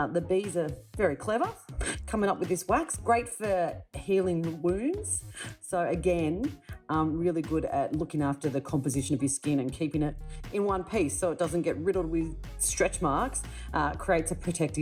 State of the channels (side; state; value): both; identical; correlation 1.00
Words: bees are very clever coming up with this wax, great for healing wounds. So again, really good at looking after the composition of your skin and keeping it in one piece so it doesn't get riddled with stretch marks. Creates a